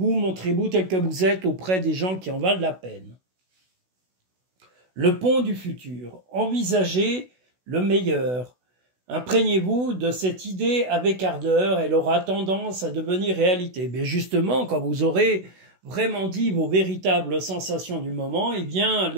montrez-vous tel que vous êtes auprès des gens qui en valent la peine. Le pont du futur. Envisagez le meilleur. Imprégnez-vous de cette idée avec ardeur, elle aura tendance à devenir réalité. Mais justement, quand vous aurez vraiment dit vos véritables sensations du moment, eh bien,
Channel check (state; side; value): late; left; 16 ms